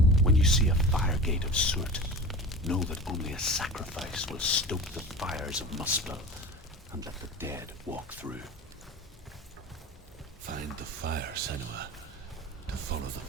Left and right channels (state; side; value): normal; both; correlation 0.33